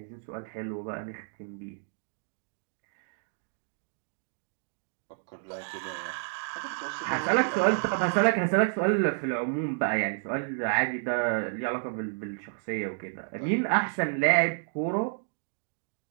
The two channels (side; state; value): left; silent; digital silence